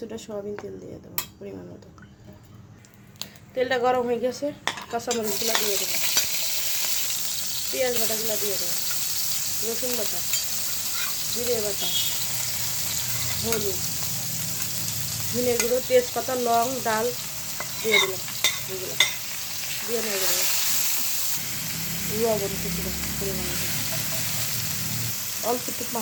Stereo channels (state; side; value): identical; both; correlation 1.00